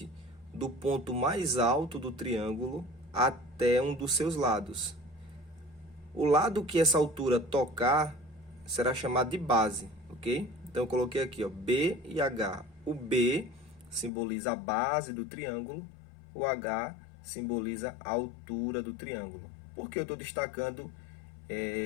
do ponto mais alto do triângulo até um dos seus lados. O lado que essa altura tocar será chamado de base, ok? Então, eu coloquei aqui, ó, B e H. O B simboliza a base do triângulo, o H simboliza a altura do triângulo. Por que eu estou destacando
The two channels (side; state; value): right; drops out; at 14.1 s